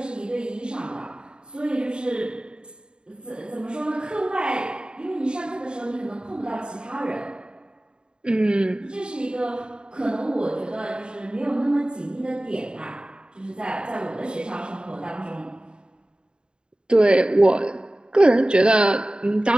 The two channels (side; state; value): left; late; 0.050 ms